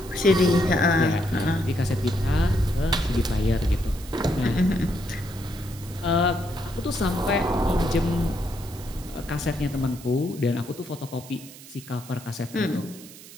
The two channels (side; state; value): right; noise; hiss, 18 dB below the sound